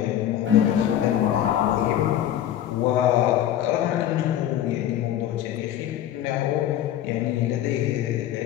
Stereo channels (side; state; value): right; quieter; 11.5 dB